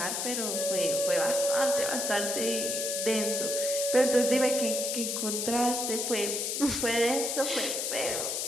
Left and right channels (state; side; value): noise; left; hiss, 1 dB below the sound